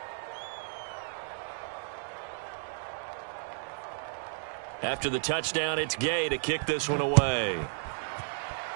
After the touchdown, it's Gay to kick this one away.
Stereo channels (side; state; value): left; silent; digital silence